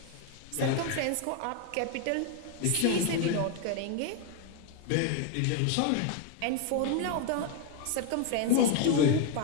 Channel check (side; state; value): both; different; correlation 0.01